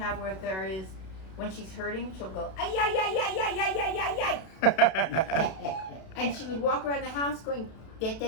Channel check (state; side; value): late; right; 32 ms